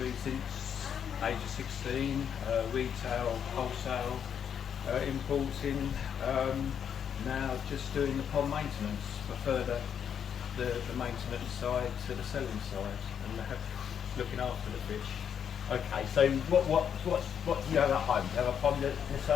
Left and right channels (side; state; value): right; quieter; 8.1 dB